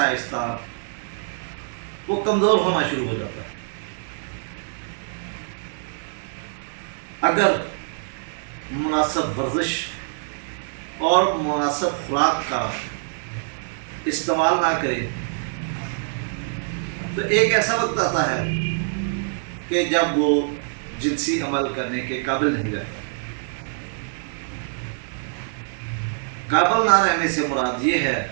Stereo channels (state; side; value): silent; left; digital silence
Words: وہ کمزور ہونا شروع ہو جاتا ہے۔ اگر مناسب ورزش اور مناسب خوراک کا استعمال نہ کرے تو ایک ایسا وقت آتا ہے کہ جب وہ جنسی عمل کرنے کے قابل نہیں رہتا۔ قابل نہ رہنے سے مراد یہ ہے